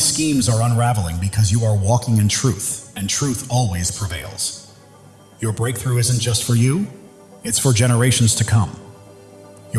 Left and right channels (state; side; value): identical; both; correlation 1.00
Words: schemes are unraveling because you are walking in truth, and truth always prevails. Your breakthrough isn't just for you, it's for generations to come.